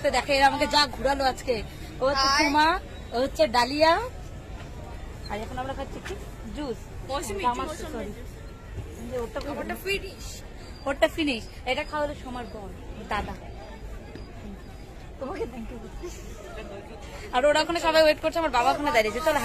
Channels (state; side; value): identical; both; correlation 1.00